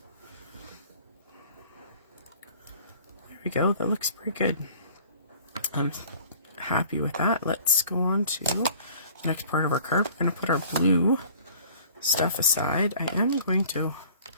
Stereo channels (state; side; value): inverted; both; correlation -0.50